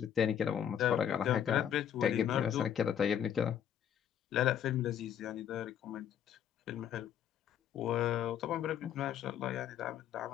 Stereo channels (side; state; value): right; quieter; 9.4 dB